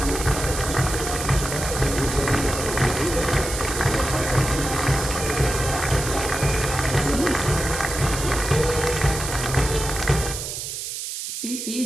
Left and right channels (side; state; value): right; noise; hiss, 6 dB below the sound